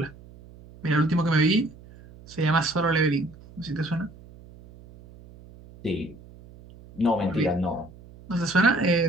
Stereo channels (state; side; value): noise; right; hum, 21 dB below the sound